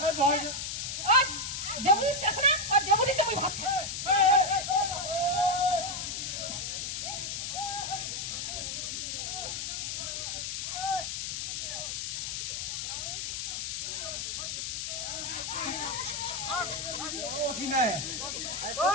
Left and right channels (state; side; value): noise; left; hiss, 3 dB below the sound